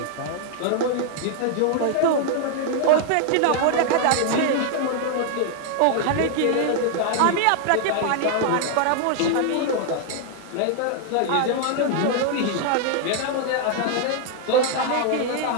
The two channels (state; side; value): different; both; correlation 0.00